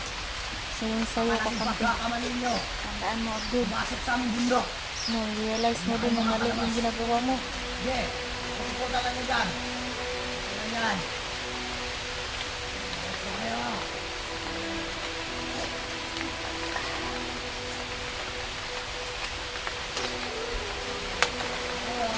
Sayang-sayo ka Malaking kampi. pagkakamanin nyo. Tandaan mo, Abdul. Pumasok sa aming bundok. No, realize mo din na mali yung ginagawa mo. Sige, pupunta lang nyo dyan. Ano yan? Ito kayo.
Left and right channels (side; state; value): both; identical; correlation 1.00